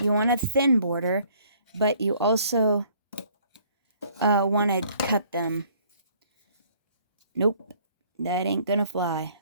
want a thin border, but you also want to cut them. Nope, that ain't gonna fly.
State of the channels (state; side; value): inverted; both; correlation -0.60